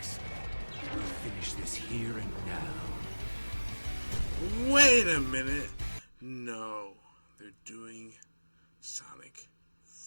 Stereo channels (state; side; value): inverted; both; correlation -1.00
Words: We'll finish this here and now. Wait a minute. No, they're doing Sonic